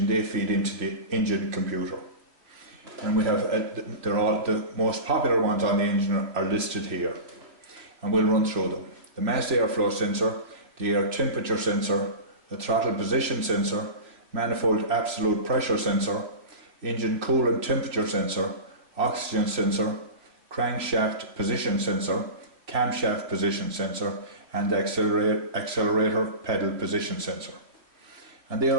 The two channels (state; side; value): late; left; 2.9 ms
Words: they feed into the engine computer. And we have, they're all, the most popular ones on the engine are listed here. And we'll run through them. The mass airflow sensor, the air temperature sensor, the throttle position sensor, manifold absolute pressure sensor, engine coolant temperature sensor, oxygen sensor, crankshaft position sensor, camshaft position sensor, and the accelerator pedal position sensor. And they